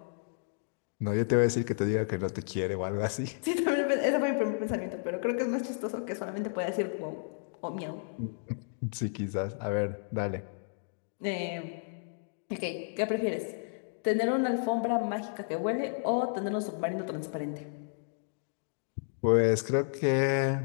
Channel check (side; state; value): right; silent; digital silence